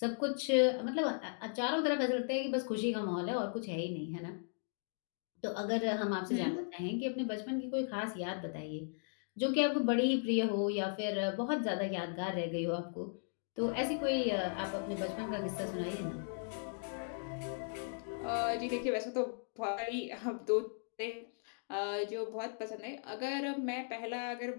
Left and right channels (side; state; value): right; silent; digital silence